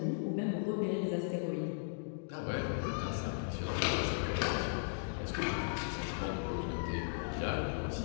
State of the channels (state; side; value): silent; right; digital silence